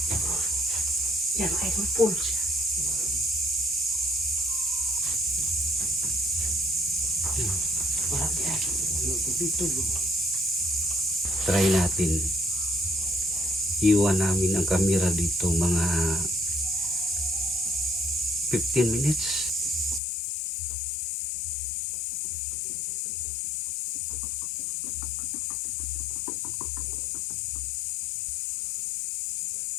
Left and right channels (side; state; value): right; drops out; at 20.0 s